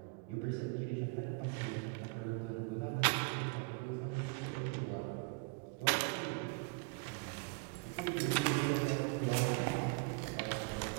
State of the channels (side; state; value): left; quieter; 30.6 dB